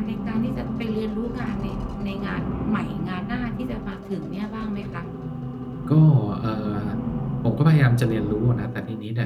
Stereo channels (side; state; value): both; identical; correlation 1.00